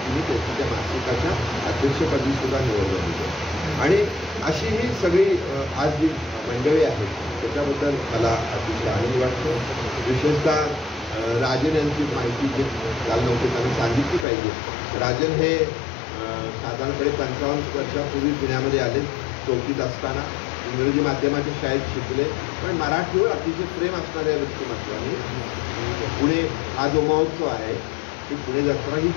त्यांची त्या मासिकाच्या अध्यक्षपदी सुद्धा निवड झाली आहे. आणि अशी ही सगळी आज जी मंडळी आहेत त्याच्याबद्दल मला अतिशय आनंद वाटतो. विशेषतः राजन यांची माहिती जे काल नव्हते त्यांना सांगितली पाहिजे. राजन हे साधारणपणे 55 वर्षापूर्वी पुण्यामध्ये आले. 4थीत असताना इंग्रजी माध्यमाच्या शाळेत शिकले, पण मराठीवर अतिशय प्रेम असणाऱ्या व्यक्तिमत्वाने पुणे हा जो महोत्सव आहे ती पुणे जत्रा ही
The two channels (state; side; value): drops out; right; at 14.2 s